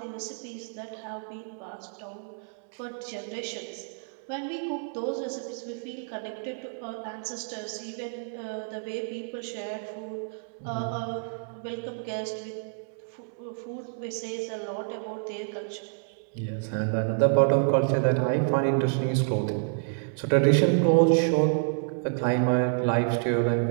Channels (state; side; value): silent; left; 59 dB below the other